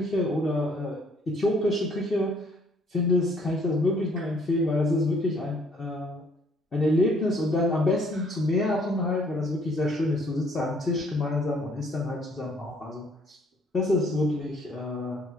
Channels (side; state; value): both; normal; correlation 0.63